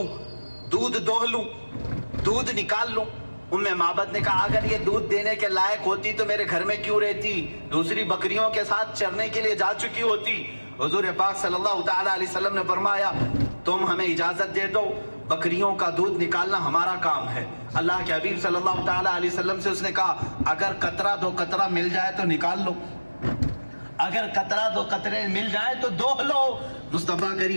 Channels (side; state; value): both; inverted; correlation -1.00